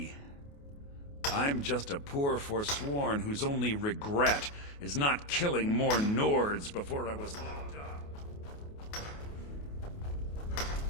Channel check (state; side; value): late; right; 28 ms